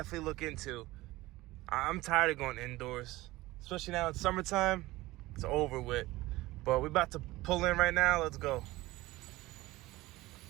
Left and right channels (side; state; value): left; quieter; 18.8 dB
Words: look into. I'm tired of going indoors, especially now it's summertime. It's over with. But we're about to pull in right now. Let's go.